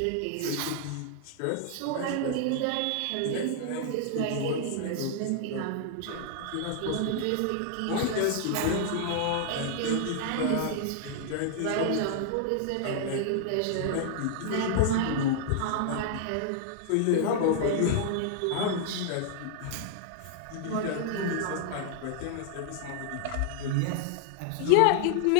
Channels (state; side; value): different; both; correlation 0.00